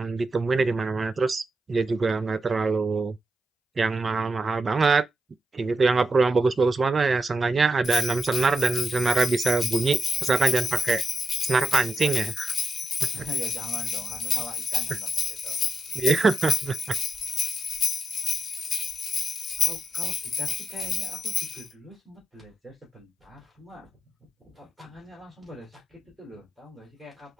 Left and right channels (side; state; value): both; normal; correlation 0.85